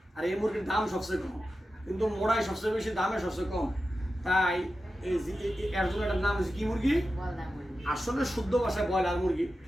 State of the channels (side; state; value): both; normal; correlation 0.92